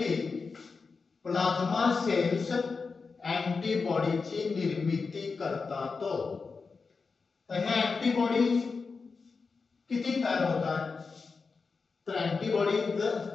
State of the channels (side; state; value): right; quieter; 4.7 dB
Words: प्लाझ्मा सेल्स अँटीबॉडीची निर्मिती करतात. तर हे अँटीबॉडीज किती तयार होतात? तर अँटीबॉडीज